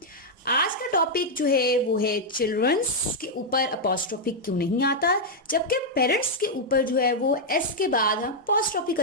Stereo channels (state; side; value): normal; both; correlation -0.03